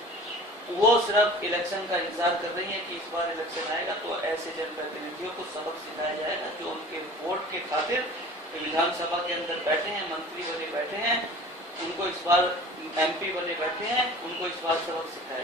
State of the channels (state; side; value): normal; both; correlation 0.42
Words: वो सिर्फ इलेक्शन का इंतजार कर रही है कि इस बार इलेक्शन आएगा तो ऐसे जनप्रतिनिधियों को सबक सिखाया जाएगा जो उनके वोट के खातिर विधानसभा के अंदर बैठे हैं, मंत्री बने बैठे हैं, उनको इस बार एमपी बने बैठे हैं, उनको इस बार सबक सिखाया